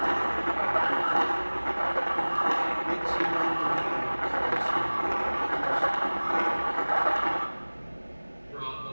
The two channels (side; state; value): both; inverted; correlation -1.00